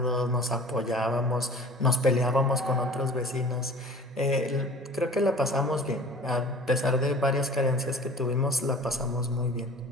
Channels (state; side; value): normal; both; correlation 0.44